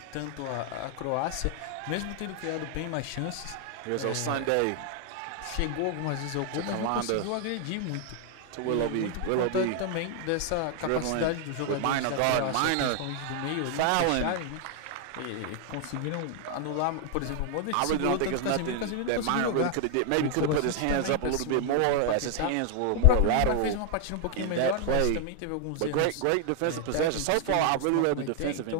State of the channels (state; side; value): different; both; correlation 0.00